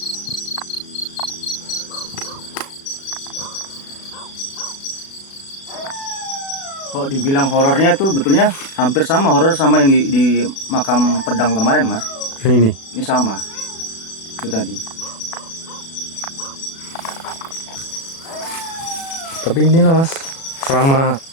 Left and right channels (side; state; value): right; late; 36 ms